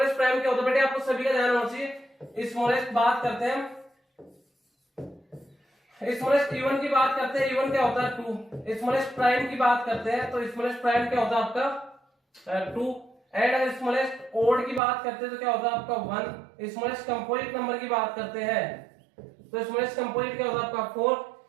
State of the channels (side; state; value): left; drops out; at 14.8 s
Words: प्राइम क्या होता है, बेटे आपको सभी का ध्यान होना चाहिए। स्मॉलेस्ट बात करते हैं, स्मॉलेस्ट इवन की बात करते हैं, इवन क्या होता है 2, स्मॉलेस्ट प्राइम की बात करते हैं तो स्मॉलेस्ट प्राइम क्या होता है आपका 2, एंड अगर स्मॉलेस्ट ओड की बात करते हैं तो क्या होता है आपका 1, स्मॉलेस्ट कंपोजिट नंबर की बात करते हैं तो स्मॉलेस्ट कंपोजिट क्या होता है आपका 4,